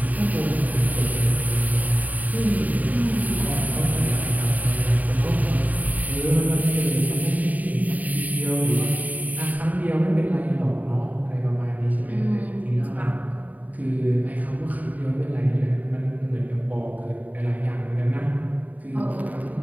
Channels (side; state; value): left; late; 0.076 ms